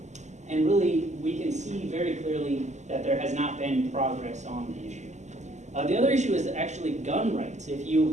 And really, we can see very clearly that there has not been progress on the issue. The other issue is actually gun rights. If you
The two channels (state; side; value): late; left; 0.34 ms